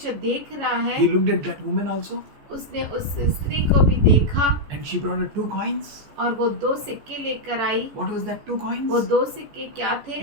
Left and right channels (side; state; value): left; late; 14 ms